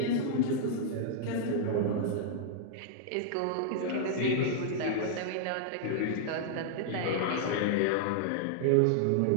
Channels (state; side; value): different; both; correlation -0.01